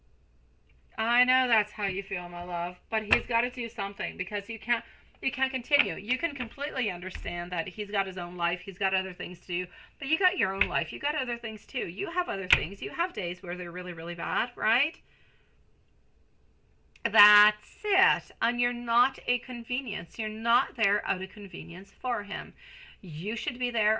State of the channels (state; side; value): identical; both; correlation 1.00